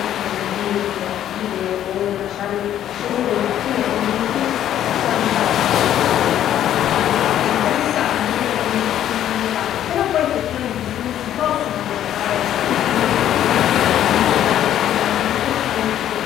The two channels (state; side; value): quieter; right; 11.3 dB